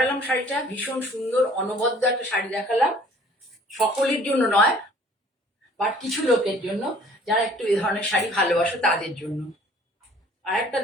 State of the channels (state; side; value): normal; both; correlation 0.54